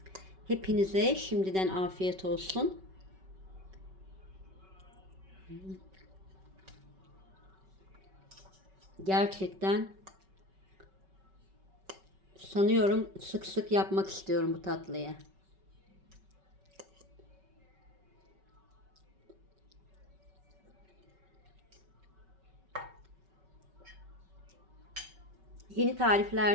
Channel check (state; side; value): late; left; 5.3 ms